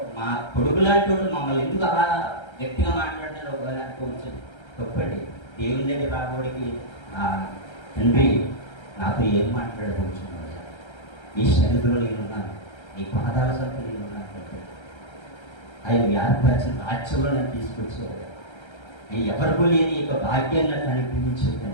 మా కొడుకు లాంటి వాడు మమ్మల్ని ఎందుకు అలా గట్టిగా మాట్లాడినారు ఒకవేళ అనుకోవచ్చు. తప్పండి. దేవుని దగ్గర రాబోడికి తండ్రి నాతో ఏం మాట్లాడవచ్చు, నీ సన్నిధిలో నేనున్నాను, నీ పాదాల సంత నేనున్నాను, ఆయన వ్యాధిపరిచిన రాజ్యంలో నన్ను తీసుకొచ్చేవాడు, ఎవరికూ లేని యొక్క భాగ్యాన్ని నాకు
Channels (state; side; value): late; right; 1.3 ms